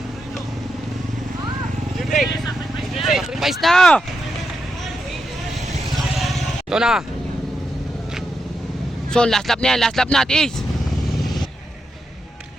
Napais na! Ito na. So, last lap na yan. Last lap na, Tis.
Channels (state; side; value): normal; both; correlation 0.85